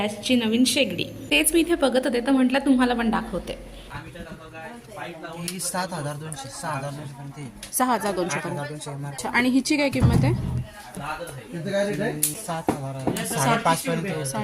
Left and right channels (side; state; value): both; identical; correlation 1.00